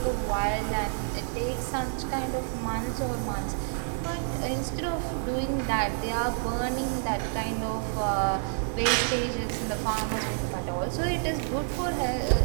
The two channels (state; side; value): silent; left; digital silence